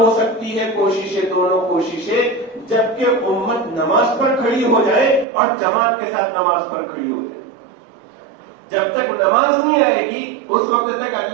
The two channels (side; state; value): left; drops out; at 5.2 s